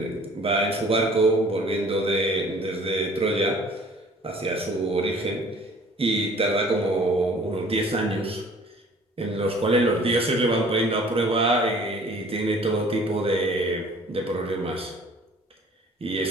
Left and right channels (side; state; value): both; normal; correlation 0.52